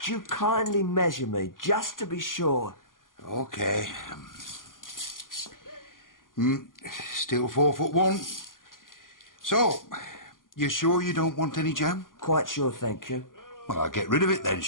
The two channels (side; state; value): right; late; 0.90 ms